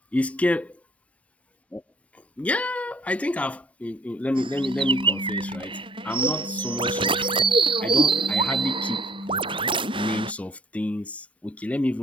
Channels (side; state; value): both; normal; correlation 0.59